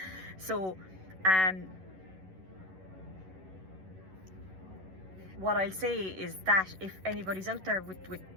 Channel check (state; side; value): late; left; 11 ms